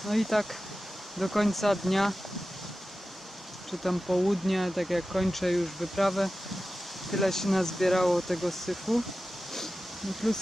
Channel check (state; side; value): normal; both; correlation 0.94